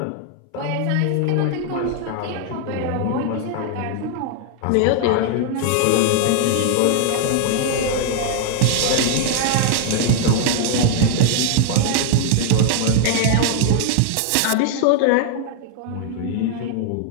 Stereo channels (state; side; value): different; both; correlation 0.00